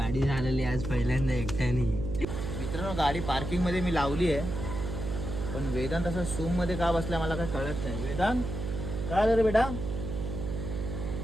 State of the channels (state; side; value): noise; right; hum, 5 dB below the sound